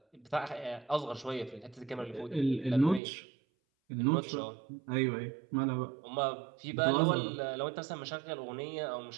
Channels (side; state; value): left; drops out; at 3.0 s